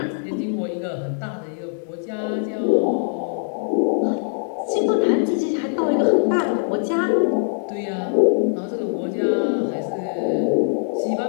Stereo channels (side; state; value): right; silent; digital silence